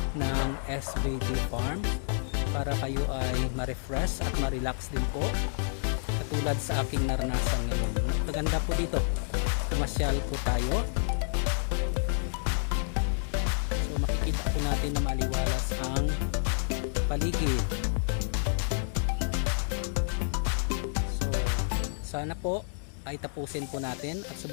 ng SBD Farm para kayo ay ma-refresh at ma-relax din po. Tulad sa aking naranasan ngayon. Maganda po dito. Pumasyal po tayo. So makikita po natin na maliwalas ang paligid. So sana po ay tapusin po natin at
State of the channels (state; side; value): silent; right; digital silence